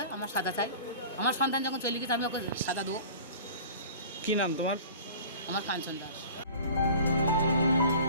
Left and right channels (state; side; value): inverted; both; correlation -0.42